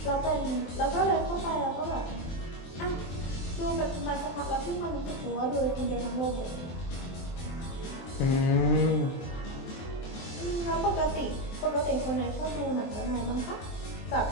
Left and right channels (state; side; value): late; right; 23 ms